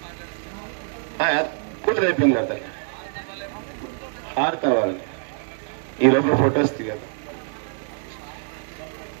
కూతురు అయిపోయింది కదా హారతి అవ్వాలి ఈ లోపల ఫొటోస్ దిగదు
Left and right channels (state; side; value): silent; left; 62 dB below the other